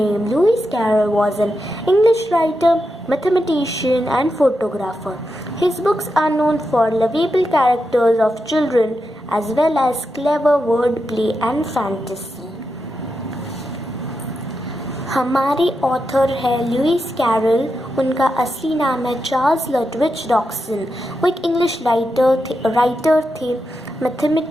Lewis Carroll, was an English writer, mathematician, and photographer. His books are known for lovable characters of children as well as clever wordplay and fantasy. हमारे author है Lewis Carol. उनका असली नाम है Charles लटविच डॉक्सन। वो एक English writer थे,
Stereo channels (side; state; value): both; normal; correlation 0.87